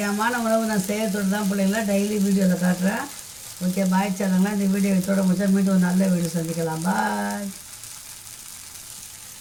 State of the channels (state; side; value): noise; right; rumble, 28 dB below the sound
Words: உணவு நான் செய்யறதோடு தான் பிள்ளைங்களா டெய்லி வீடியோவில் காட்டுறேன். ஓகே, பாய் சேனங்களா. இந்த வீடியோ இதோட முடிச்சா மீண்டும் ஒரு நல்ல வீடியோ சந்திக்கலாம். பாய்.